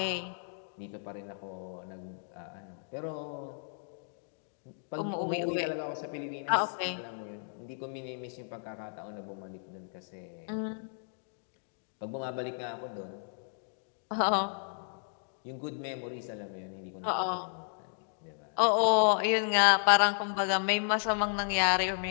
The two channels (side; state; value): right; silent; digital silence